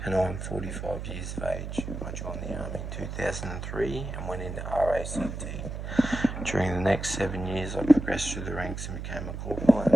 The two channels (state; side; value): noise; right; hum, 6 dB below the sound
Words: and I'm 45 years of age. I joined the Army in 2003 and went into RACT. During the next 7 years I progressed through the ranks and became a corporal and